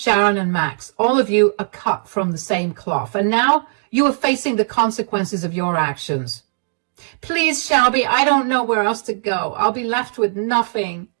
and Max, all of you are cut from the same cloth, and now you are facing the consequences of your actions. Please, Shelby, I don't know where else to go. I'll be left with nothing.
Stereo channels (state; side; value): silent; left; digital silence